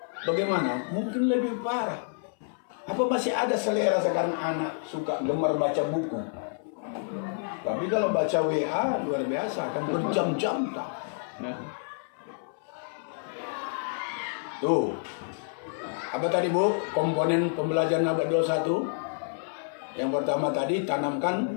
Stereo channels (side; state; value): right; silent; 59 dB below the other